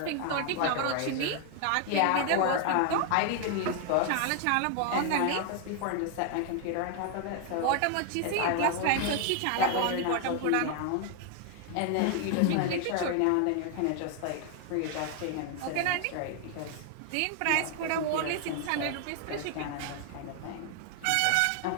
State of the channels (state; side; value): different; both; correlation 0.00